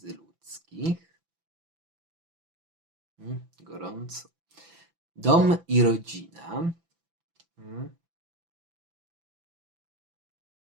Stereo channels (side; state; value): left; late; 6.0 ms